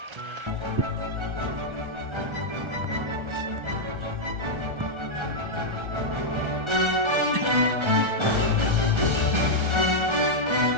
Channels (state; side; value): late; left; 1.3 ms